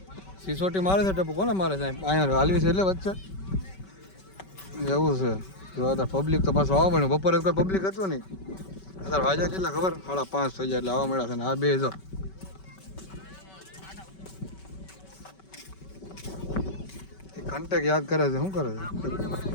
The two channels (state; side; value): late; right; 5.2 ms